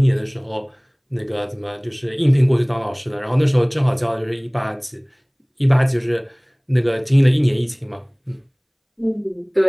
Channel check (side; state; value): both; identical; correlation 1.00